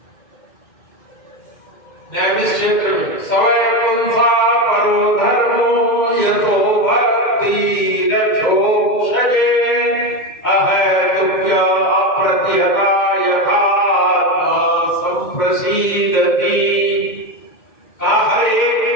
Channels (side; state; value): right; late; 2.1 ms